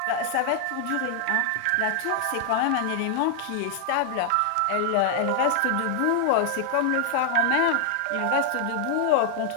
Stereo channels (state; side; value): different; both; correlation 0.00